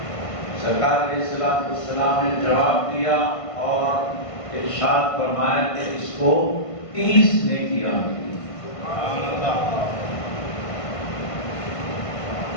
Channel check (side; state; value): right; late; 1.5 ms